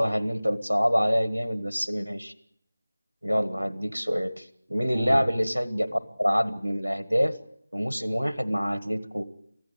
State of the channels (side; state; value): both; inverted; correlation -0.99